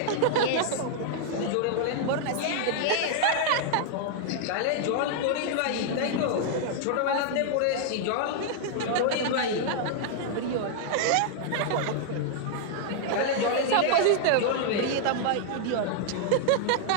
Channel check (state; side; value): different; both; correlation -0.01